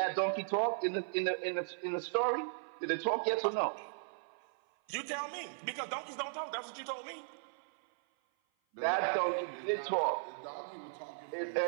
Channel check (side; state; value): left; silent; 53 dB below the other